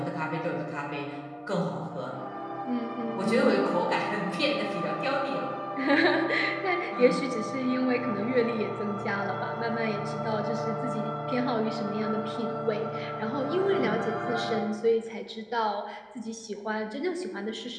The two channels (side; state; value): both; identical; correlation 1.00